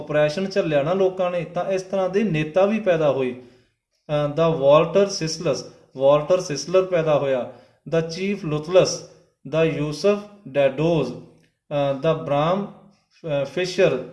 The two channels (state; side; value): identical; both; correlation 1.00